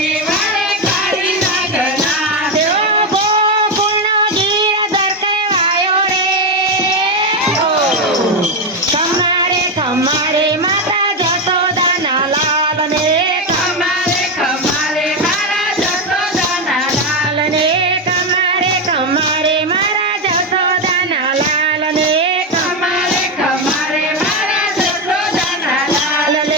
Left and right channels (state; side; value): normal; both; correlation 0.09